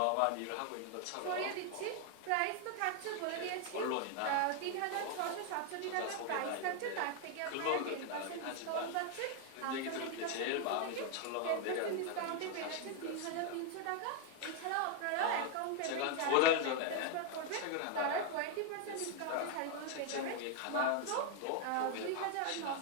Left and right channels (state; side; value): different; both; correlation 0.00